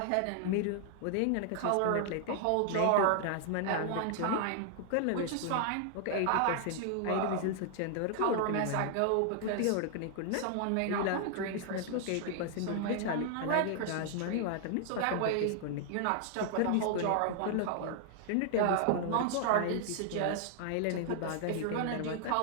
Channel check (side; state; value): both; different; correlation 0.00